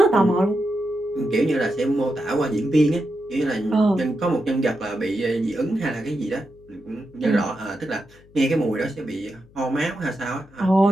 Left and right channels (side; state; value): left; noise; hum, 26 dB below the sound